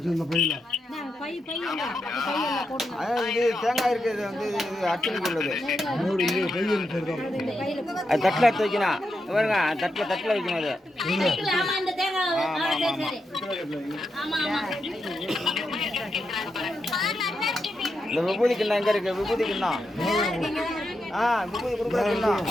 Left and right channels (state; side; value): normal; both; correlation 0.85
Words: இது தேங்காய் இருக்குது வந்து அர்ச்சனைக்கு உள்ளது. அது தட்டில் எடுத்து வைக்கணும் பாருங்க, தட்டில் வைக்கணும் அது. இந்த விபூதி கிண்ணம் எங்க இருக்கு? விபூதி கிண்ணம் விபூதி கொடுக்குற கிண்ணம்